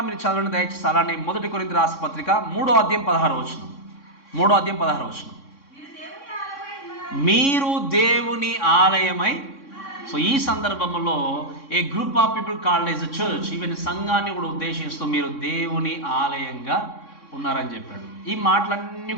మీరు చదవండి దయచేసి. అలానే 1 కొరింథీయులకు రాసిన పత్రిక 3వ అధ్యాయం 16వ వచనం. 3వ అధ్యాయం 16వ వచనం. మీరు దేవుని ఆలయమై. సో ఈ సందర్భంలో a group of people called as a church, even సంఘాన్ని కూడా ఉద్దేశిస్తూ మీరు దేవుని ఆలయంగా ఉన్నారని చెప్పాడు. ఈ మాటలన్నీ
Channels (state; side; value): late; right; 3.6 ms